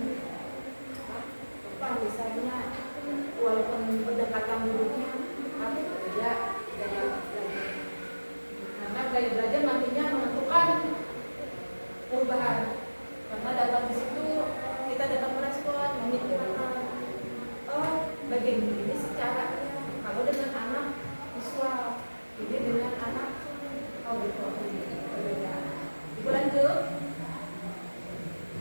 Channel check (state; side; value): inverted; both; correlation -1.00